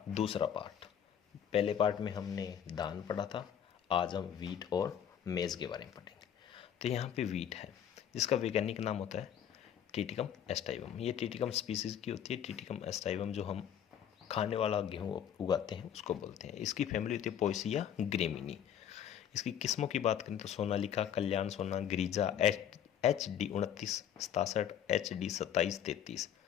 दूसरा पार्ट। पहले पार्ट में हमने धान पढ़ा था, आज हम वीट और मेज़ के बारे में पढ़ेंगे। तो यहाँ पे वीट है, जिसका वैज्ञानिक नाम होता है टिटिकम एस्टाइवम। ये टिटिकम स्पीसीज़ की होती है। टिटिकम एस्टाइवम जो हम खाने वाला गेहूँ उगाते हैं उसको बोलते हैं। इसकी फैमिली होती है पोएसिया ग्रेमिनी। इसकी किस्मों की बात करें तो सोनालिका, कल्याण सोना, गिरिजा, HD 29, 67, HD 27, 33,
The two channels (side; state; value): right; quieter; 9.4 dB